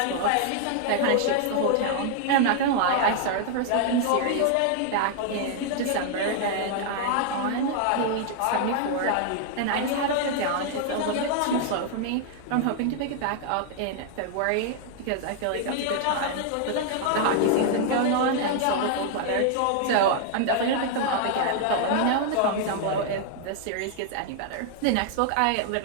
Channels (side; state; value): both; different; correlation 0.00